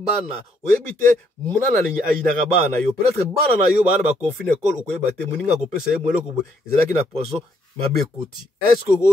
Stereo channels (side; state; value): both; normal; correlation 0.71